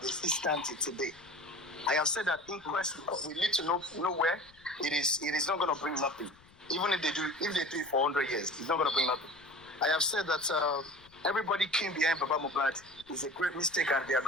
is still standing today. I have said that inquest, we need to know where it is not going to bring nothing. Even if they do it for 100 years, it's not going to bring nothing. I have said that everybody came behind Baba Mohbad is a great mistake and they are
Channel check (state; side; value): noise; left; rumble, 27 dB below the sound